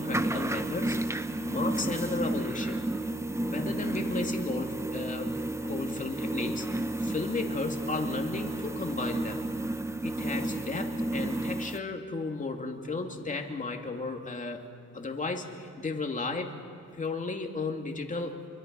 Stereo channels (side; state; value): both; normal; correlation 0.66